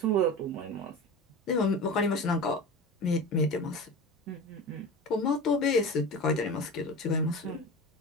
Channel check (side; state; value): both; normal; correlation 0.30